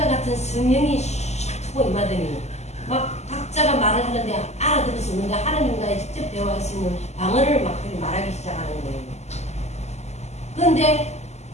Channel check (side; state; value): right; late; 0.33 ms